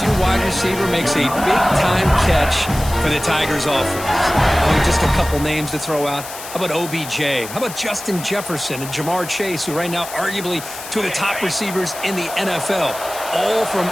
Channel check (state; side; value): noise; left; hiss, 12 dB below the sound